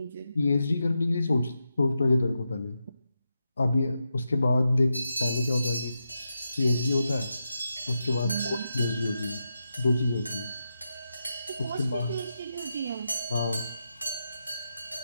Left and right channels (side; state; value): both; inverted; correlation -0.87